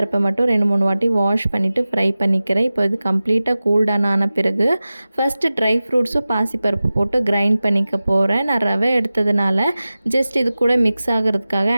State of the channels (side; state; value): both; inverted; correlation -0.96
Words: மட்டும் 2, 3 வாட்டி வாஷ் பண்ணிவிட்டு ஃப்ரை பண்ணிக்கிறேன். இப்போ இது கம்ப்ளீட்டாக கூல் டவுன் ஆன பிறகு ஃபஸ்ட்டு ட்ரை ஃப்ரூட்ஸும் பாசிப்பருப்பு போட்டு கிரைண்ட் பண்ணிக்க போகிறேன். நான் ரவை எடுத்ததுனால ஜஸ்ட் இது கூட மிக்ஸ் ஆகிறதுக்காக